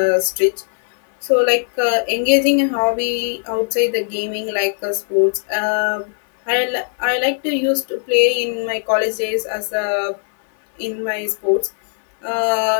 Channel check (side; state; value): right; silent; 62 dB below the other